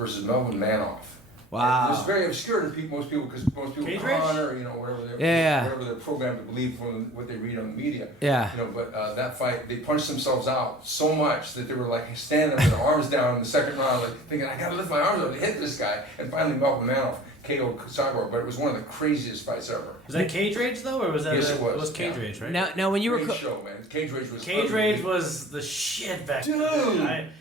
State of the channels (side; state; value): both; normal; correlation 0.43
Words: Melvin Manoff. Wow. It was very obscure to most people because most people honor, whatever they're programmed to believe from what they read on the media. Yeah. But that fight, they punched themselves out so much that they were like standing with their arms down in the second round, like thinking, I gotta lift my arms up to hit this guy. And finally, Melvin Manoff KO'd Cyborg, but it was one of the craziest fights ever. Was that Cage Rage though, or was that? Yes, it was. It was Cage Rage, right? Now when you were Great show, man. Cage Rage was. Cage Rage was the shit back then. Dude,